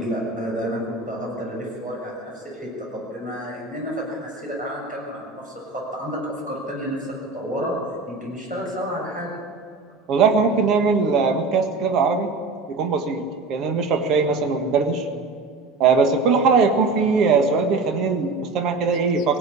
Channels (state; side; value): quieter; left; 3.9 dB